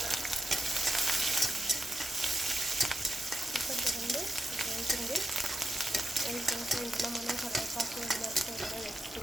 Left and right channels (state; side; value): normal; both; correlation 0.88